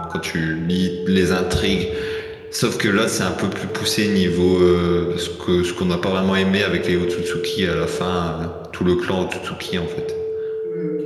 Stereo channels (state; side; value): identical; both; correlation 1.00